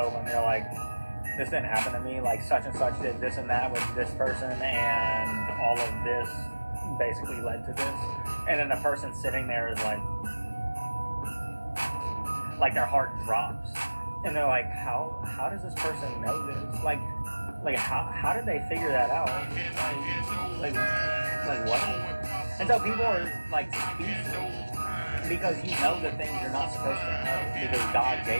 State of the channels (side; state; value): both; inverted; correlation -1.00